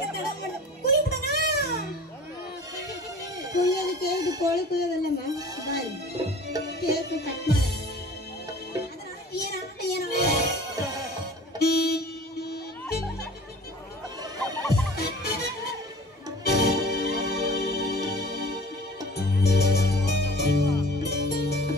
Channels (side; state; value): both; normal; correlation 0.44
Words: ತಡ ಮಾಡ ಕುಯ್ಬಿಡಣ. ಕುಯ್ಯೋದಕ್ಕೆ ಇದು ಕೋಳಿ ಕುಯ್ಯೋದಲ್ಲಮ್ಮ, ಬಾರಿ ಕೇಕ್ ಕಟ್ ಮಾಡ.